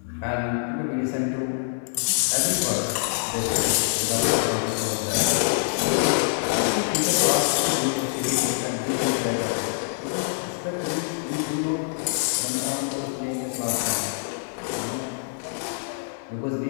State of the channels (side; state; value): right; silent; digital silence